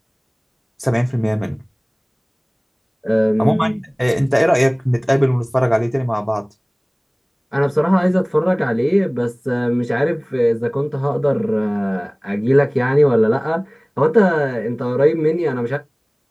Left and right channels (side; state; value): both; identical; correlation 1.00